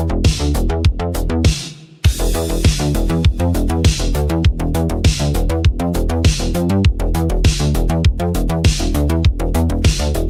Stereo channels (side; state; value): both; identical; correlation 1.00